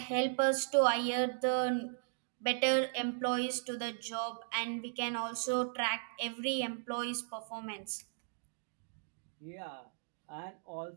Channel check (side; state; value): left; silent; digital silence